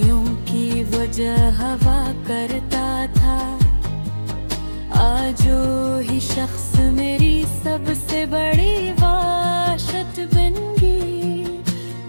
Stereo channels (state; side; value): inverted; both; correlation -1.00